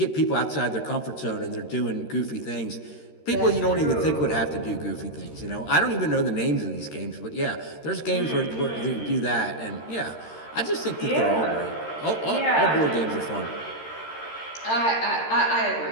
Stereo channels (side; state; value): right; late; 13 ms